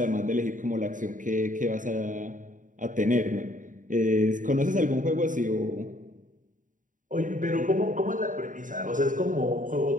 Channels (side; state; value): left; late; 0.38 ms